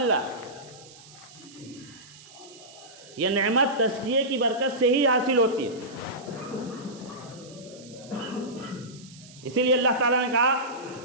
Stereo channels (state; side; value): noise; right; hiss, 21 dB below the sound